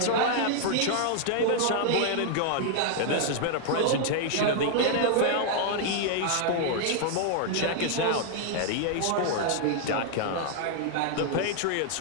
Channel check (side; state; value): both; different; correlation 0.00